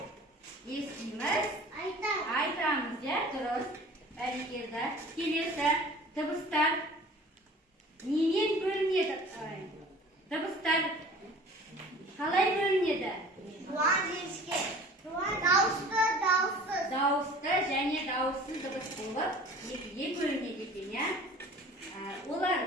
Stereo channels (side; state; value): both; normal; correlation 0.45